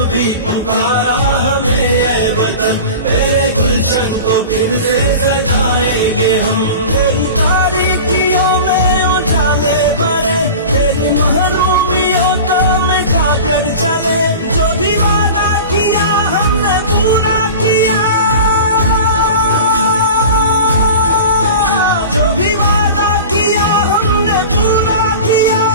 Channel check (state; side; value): inverted; both; correlation -0.34